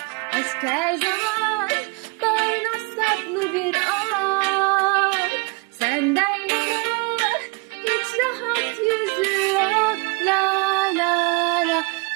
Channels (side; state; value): left; quieter; 29.8 dB